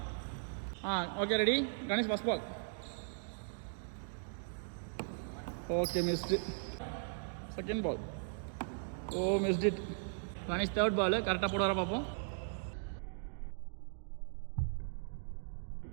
Okay, ready. Ganesh first ball. Okay, missed. Second ball. Missed it. Ganesh third ball கரெக்டாக போட வர பார்ப்போம்.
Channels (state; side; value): silent; left; digital silence